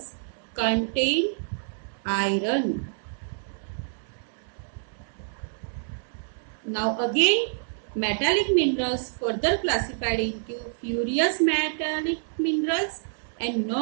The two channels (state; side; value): silent; left; digital silence